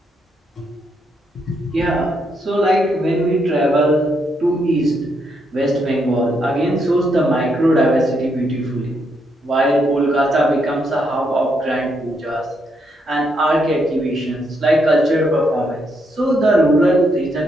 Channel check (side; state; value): both; normal; correlation 0.77